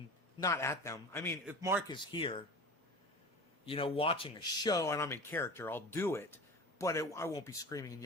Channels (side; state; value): both; normal; correlation 0.34